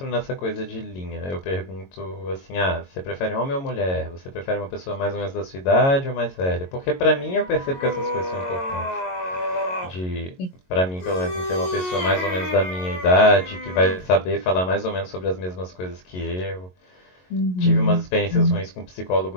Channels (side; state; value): right; late; 22 ms